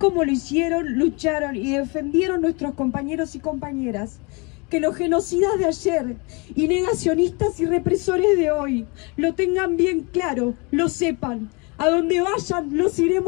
lo hicieron, lucharon y defendieron nuestros compañeros y compañeras. Que los genocidas de ayer y negacionistas y represores de hoy lo tengan bien claro, lo sepan. A donde vayan, los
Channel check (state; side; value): quieter; right; 30.0 dB